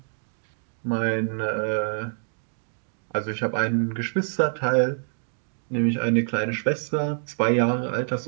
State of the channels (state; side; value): silent; left; digital silence